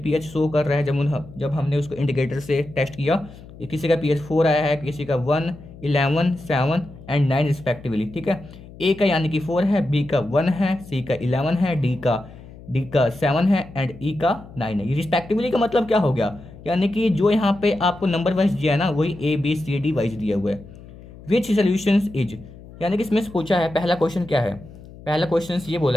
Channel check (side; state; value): left; noise; hum, 18 dB below the sound